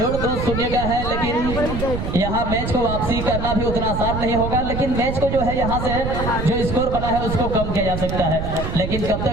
2-0 का है, लेकिन यहाँ मैच को वापसी करना भी उतना आसान नहीं होगा, लेकिन मैच को जो है यहाँ से जो स्कोर बना है उसको कम किया जा सकता है, लेकिन कब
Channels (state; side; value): noise; right; rumble, 4 dB below the sound